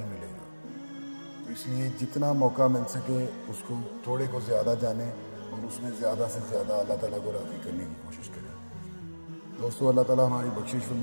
ملے گا، تو اس لیے جتنا موقع مل سکے اس کو تھوڑے کو زیادہ جانیں اور اس میں زیادہ سے زیادہ اللہ تعالیٰ کو راضی کرنے کی کوشش کریں۔ دوستو، اللہ تعالیٰ ہماری بخشش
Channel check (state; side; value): inverted; both; correlation -1.00